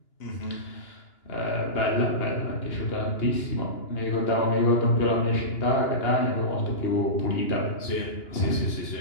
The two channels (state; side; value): late; right; 2.9 ms